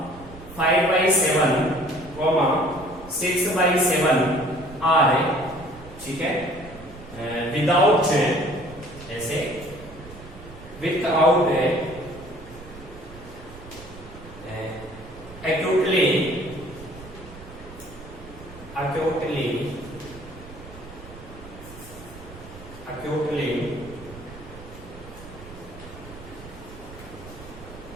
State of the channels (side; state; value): right; noise; rumble, 17 dB below the sound